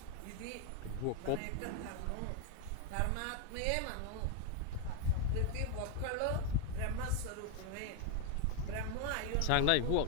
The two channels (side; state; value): both; different; correlation 0.01